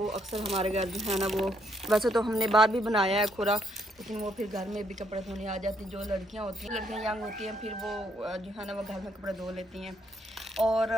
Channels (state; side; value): normal; both; correlation 0.72